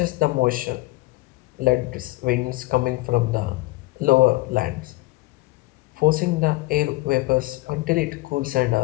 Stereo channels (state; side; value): quieter; right; 20.7 dB